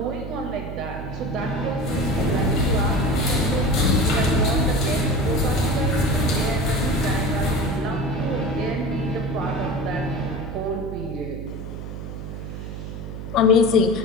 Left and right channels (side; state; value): right; noise; hum, 8 dB below the sound